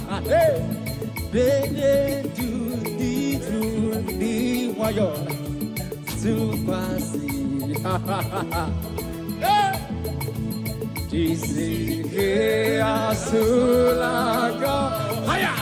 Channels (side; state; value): both; identical; correlation 1.00